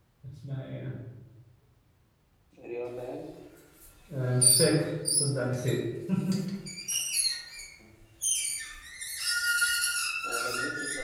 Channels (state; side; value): identical; both; correlation 1.00